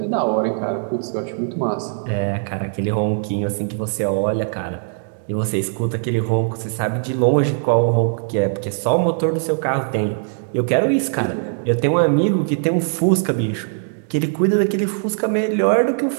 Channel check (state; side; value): silent; left; digital silence